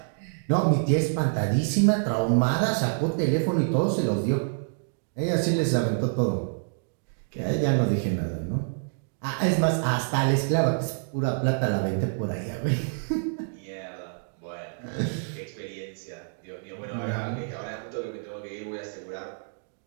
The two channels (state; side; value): silent; left; digital silence